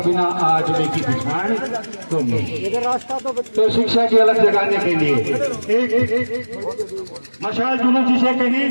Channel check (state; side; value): inverted; both; correlation -1.00